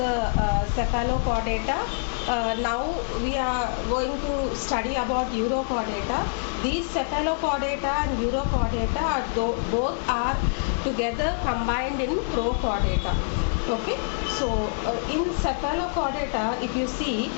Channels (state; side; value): silent; right; 57 dB below the other